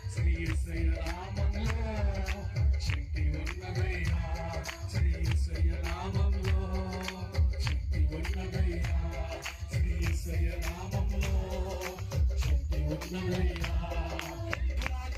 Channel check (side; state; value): both; identical; correlation 1.00